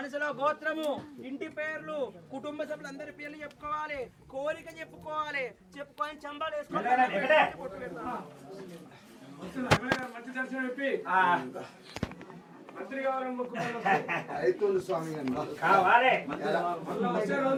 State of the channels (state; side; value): identical; both; correlation 1.00